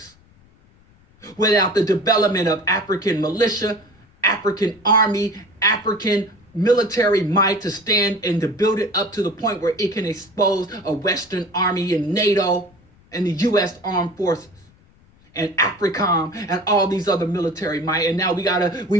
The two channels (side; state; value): left; noise; rumble, 30 dB below the sound